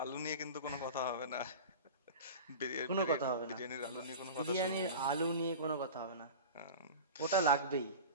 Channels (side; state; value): both; inverted; correlation -0.32